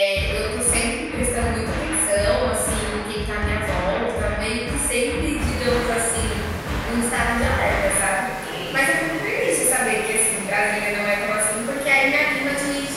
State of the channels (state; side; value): identical; both; correlation 1.00